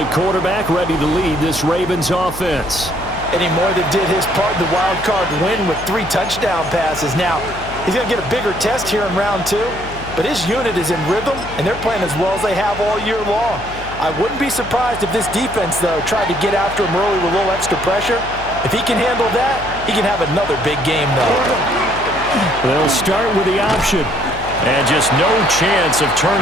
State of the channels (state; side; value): noise; left; hum, 14 dB below the sound